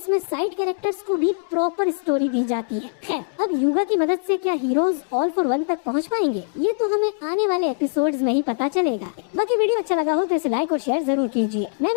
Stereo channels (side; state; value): right; silent; 64 dB below the other